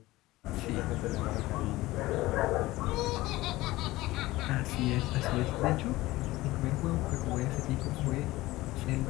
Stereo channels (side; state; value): right; quieter; 18.5 dB